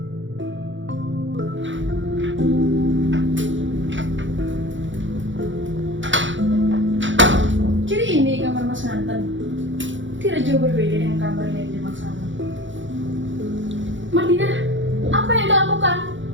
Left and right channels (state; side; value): late; left; 0.55 ms